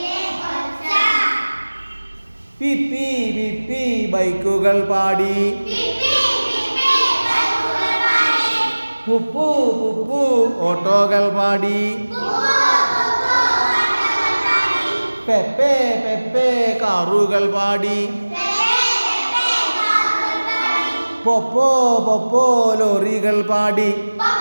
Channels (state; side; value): inverted; both; correlation -1.00